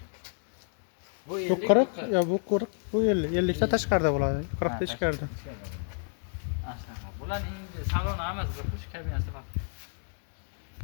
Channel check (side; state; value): right; silent; 56 dB below the other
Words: Bu 40, ya bu 40, bu 50. 50 ta tashqarida bo'ladi, 40 ta ichkarida. Bularning saloni hammasi bir xush kabinasi bor.